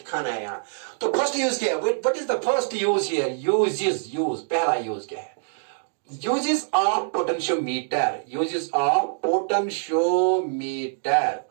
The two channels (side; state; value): left; silent; digital silence